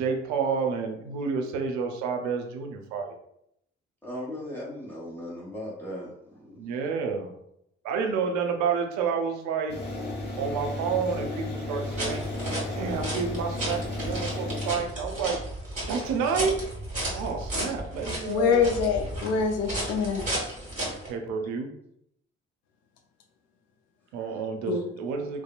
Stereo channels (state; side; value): normal; both; correlation 0.27